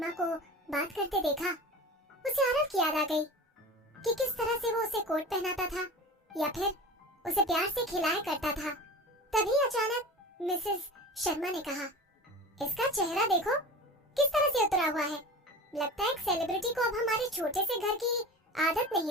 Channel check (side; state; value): both; normal; correlation 0.34